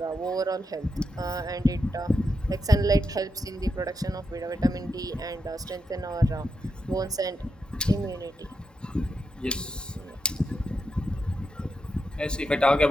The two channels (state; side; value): normal; both; correlation 0.85